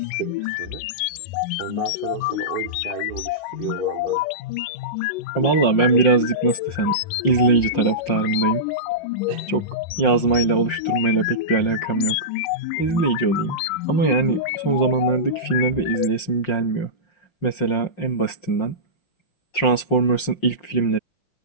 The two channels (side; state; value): right; late; 5.6 ms